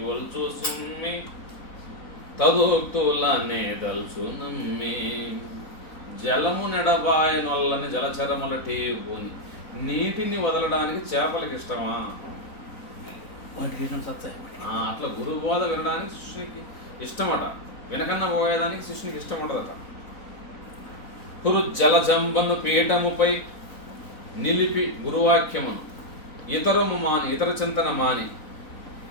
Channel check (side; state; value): right; late; 3.9 ms